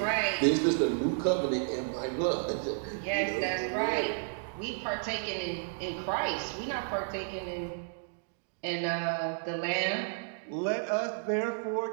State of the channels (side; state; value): left; silent; digital silence